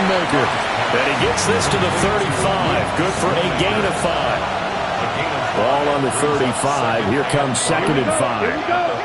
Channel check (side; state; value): both; identical; correlation 1.00